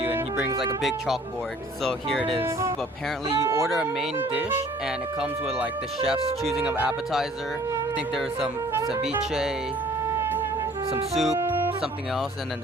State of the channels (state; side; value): normal; both; correlation 0.54